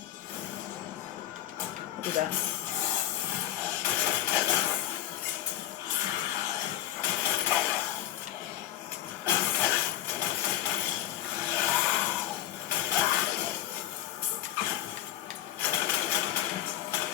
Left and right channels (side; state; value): right; quieter; 12.8 dB